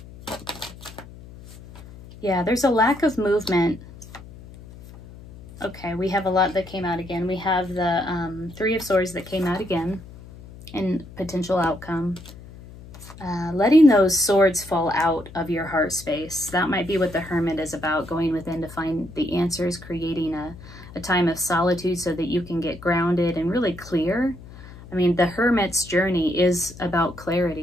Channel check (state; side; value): noise; left; hum, 17 dB below the sound